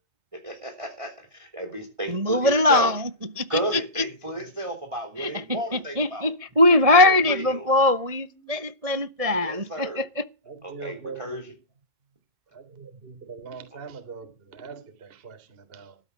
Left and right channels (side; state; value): left; late; 1.7 ms